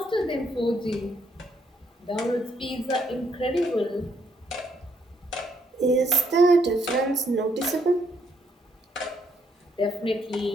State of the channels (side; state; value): both; normal; correlation 0.72